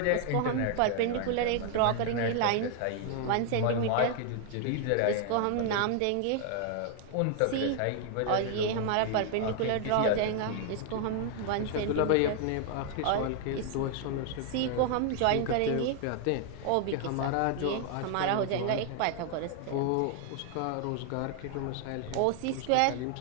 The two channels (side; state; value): both; different; correlation 0.00